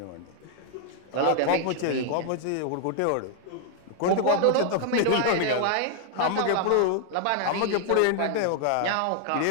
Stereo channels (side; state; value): both; different; correlation 0.00